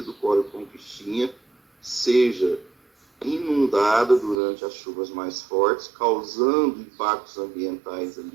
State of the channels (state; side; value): drops out; left; at 4.4 s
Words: do córrego Conquistinha seja inundada durante as chuvas mais fortes, causando impactos ambientais